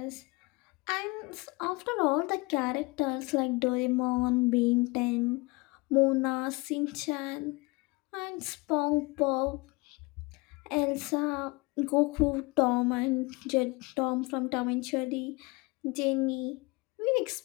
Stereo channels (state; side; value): quieter; right; 25.8 dB